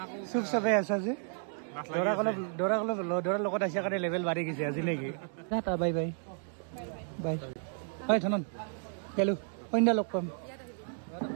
চুপ চাপে আছা যে? দৰাৰ লগত আহিছে কাৰণে লেভেল বাঢ়ি গৈছে আজি নেকি? Tata bye bye bye. হয় ধনন গেলো, সন্ধ্যা লগ পাম।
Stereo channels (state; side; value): silent; left; 56 dB below the other